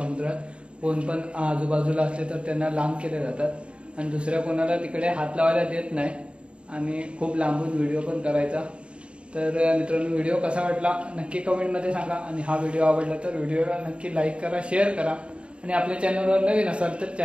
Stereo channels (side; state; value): left; late; 0.057 ms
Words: कोण पण आजूबाजूला असले तर त्यांना लांब केले जातात आणि दुसऱ्या कोणाला तिकडे हात लावायला देत नाही आणि खूप लांबून व्हिडिओ पण करायचा. तर मित्रांनो, व्हिडिओ कसा वाटला नक्की कमेंटमध्ये सांगा आणि हा व्हिडिओ आवडला तर व्हिडिओला नक्की लाईक करा, शेअर करा आणि आपल्या चॅनलवर नवीन असाल तर